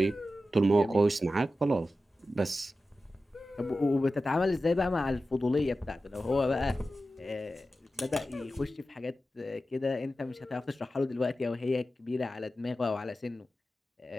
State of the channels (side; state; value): both; normal; correlation 0.93